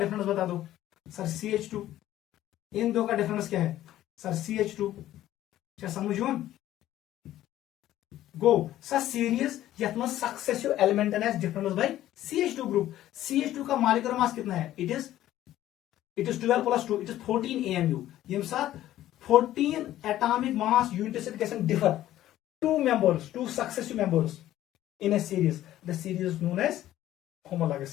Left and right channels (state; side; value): quieter; right; 13.5 dB